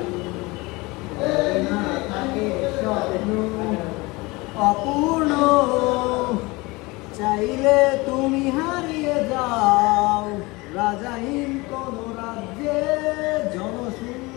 না থাকে স্বপ্ন অপূর্ণ চাইলে তুমি হারিয়ে যাও রাজাহীন কোন রাজ্যে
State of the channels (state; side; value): quieter; right; 23.6 dB